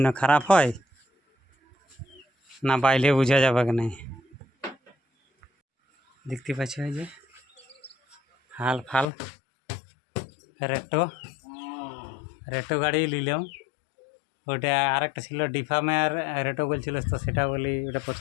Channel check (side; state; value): right; drops out; at 9.1 s